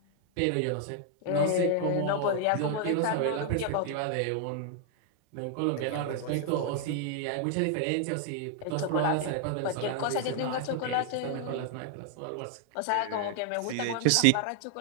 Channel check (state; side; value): different; both; correlation 0.00